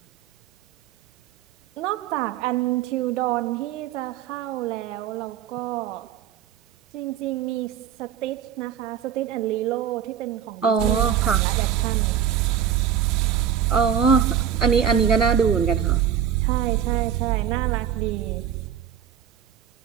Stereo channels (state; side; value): quieter; left; 8.8 dB